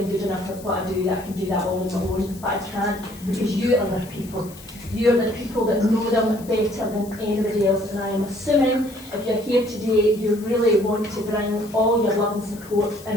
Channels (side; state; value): left; noise; hiss, 20 dB below the sound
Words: good enough at what I do, that I can do that all on my own, but I can't because you are the people. You're the people that know them better than anybody else, and I am assuming if you're here today, you really want to bring all your love and support